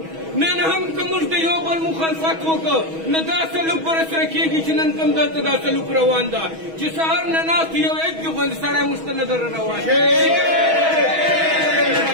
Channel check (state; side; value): late; left; 6.2 ms